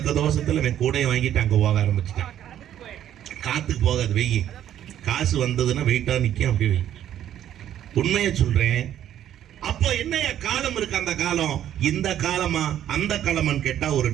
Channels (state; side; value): quieter; left; 11.1 dB